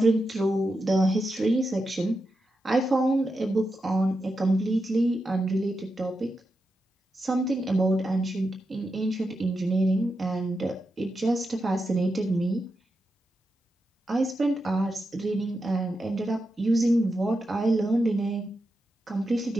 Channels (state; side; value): normal; both; correlation 0.88